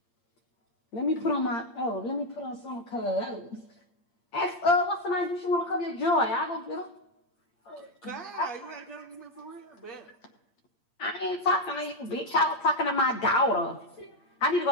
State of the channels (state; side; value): late; right; 8.7 ms